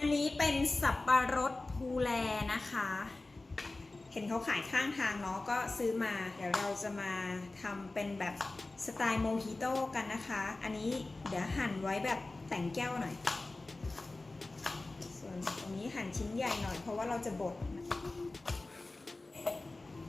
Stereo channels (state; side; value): quieter; right; 3.1 dB